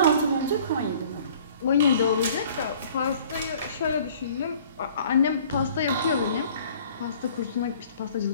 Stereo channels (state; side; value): inverted; both; correlation -0.53